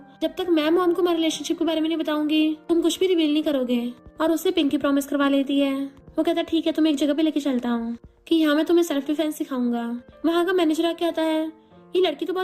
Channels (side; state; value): both; identical; correlation 1.00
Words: जब तक मैं मॉम को हमारे रिलेशनशिप के बारे में नहीं बताऊंगी तुम कुछ भी रिवील नहीं करोगे, और उससे पिंकी प्रॉमिस करवा लेती है। वो कहता है ठीक है तुम्हें एक जगह पे लेके चलता हूँ कि यहाँ मैं तुम्हें सेल्फ डिफेंस सिखाऊंगा। वहाँ का मैनेजर आके कहता है ये लड़की तो